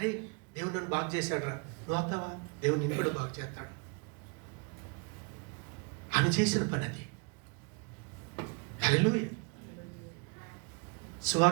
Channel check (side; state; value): left; quieter; 34.3 dB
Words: దేవుడు నన్ను బాగు చేశాడు రా, నువ్వు అవుతావా? దేవుడు నిన్ను కూడా బాగు చేస్తాడు. ఆమె చేసిన పని అది. హల్లెలూయా.